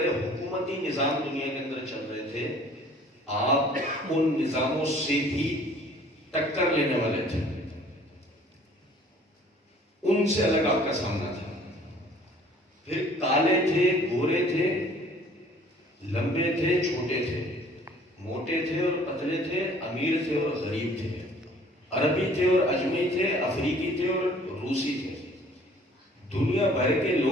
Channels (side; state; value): both; normal; correlation 0.54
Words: حکومتی نظام دنیا کے اندر چل رہے تھے. آپ ان نظاموں سے بھی ٹکر لینے والے تھے، ان سے الگ آپ کا سامنا تھا. پھر کالے تھے، گورے تھے، لمبے تھے، چھوٹے تھے، موٹے تھے اور پتلے تھے، امیر تھے اور غریب تھے، عربی تھے اور اجمی تھے، افریقی تھے اور روسی تھے. دنیا بھر کے